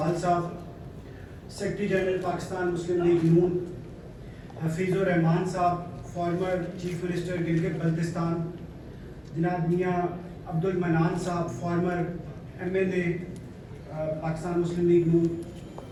صاحب، سیکرٹری جنرل پاکستان مسلم لیگ نون، حفیظ الرحمان صاحب، farmer chief minister Gilgit Baltistan, جناب میاں عبد المنان صاحب، فارمر MLA پاکستان مسلم لیگ نون،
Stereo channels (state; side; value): identical; both; correlation 1.00